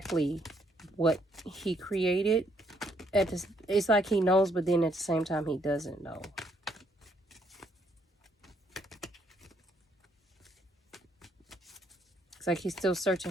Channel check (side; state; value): both; normal; correlation 0.70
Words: what he created. It's like he knows, but then at the same time he doesn't know. It's like he's still searching